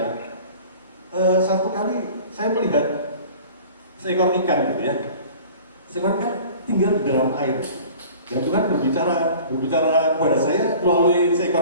Satu kali saya melihat seekor ikan gitu ya, seekor ikan tinggal di dalam air, dan Tuhan berbicara kepada saya melalui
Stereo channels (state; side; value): inverted; both; correlation -0.44